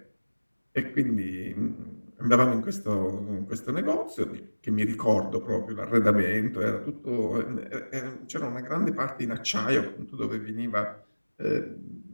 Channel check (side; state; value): both; inverted; correlation -1.00